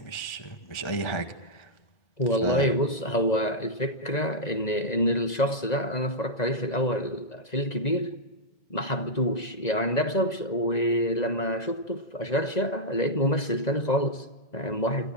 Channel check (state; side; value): late; right; 1.9 ms